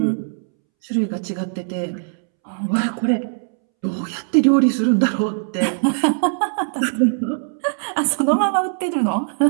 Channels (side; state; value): left; silent; 65 dB below the other